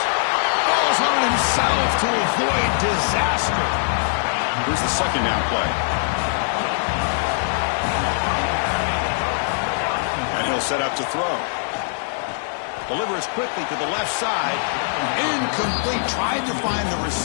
Ball's on himself to avoid disaster. Here's the 2nd down play. And he'll set up to throw. Delivers quickly to the left side. Incomplete. Tried to find the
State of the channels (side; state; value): right; silent; digital silence